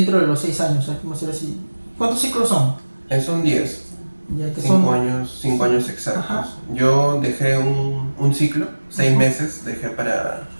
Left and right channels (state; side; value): inverted; both; correlation -1.00